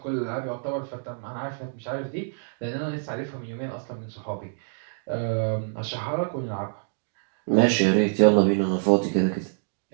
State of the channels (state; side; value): silent; left; digital silence